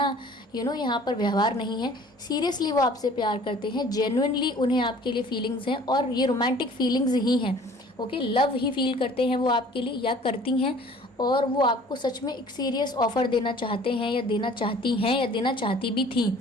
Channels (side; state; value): both; normal; correlation 0.50